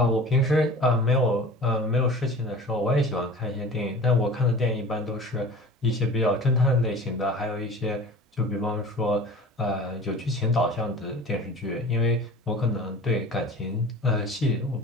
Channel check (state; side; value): normal; both; correlation 0.40